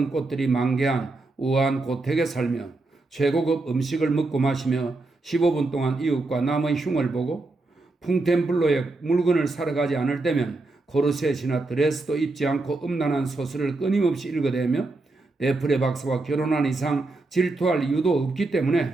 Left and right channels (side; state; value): left; quieter; 3.2 dB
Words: 꽃들이 만개한 우아한 고택에 살며 최고급 음식을 먹고 마시며 15분 동안 이웃과 남의 흉을 보고 풍템블로에 물건을 사러 가지 않을 때면 코르셋이나 드레스도 입지 않고 음란한 소설을 끊임없이 읽어대며 데프레 박사와 결혼한 이상 질투할 이유도 없기